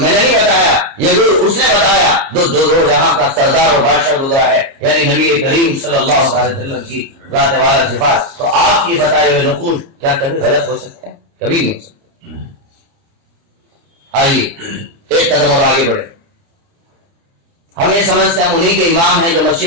نے نہیں بتایا، یہ گر اس نے بتایا دو جہاں کا سردار اور بادشاہ گزرا ہے، یعنی نبی کریم صلی اللہ علیہ وسلم کی ذات والا صفات۔ تو آپ کی بتائے ہوئے نقوش کیا کبھی غلط ہو سکتے ہیں؟ کبھی نہیں ہو سکتے۔ آئیے ایک قدم اور آگے بڑھے۔ ہم یہ سمجھتے ہیں ہم انہی کے امام ہیں جو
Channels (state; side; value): late; left; 30 ms